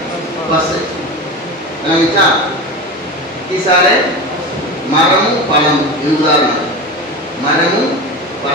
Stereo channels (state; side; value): normal; both; correlation 0.26